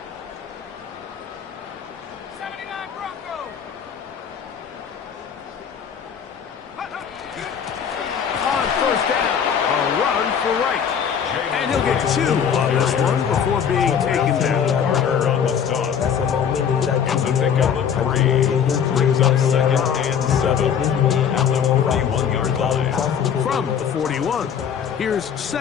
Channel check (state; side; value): quieter; right; 7.8 dB